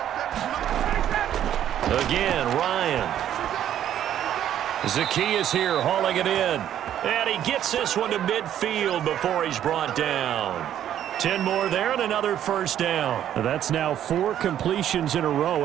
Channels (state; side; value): quieter; left; 10.8 dB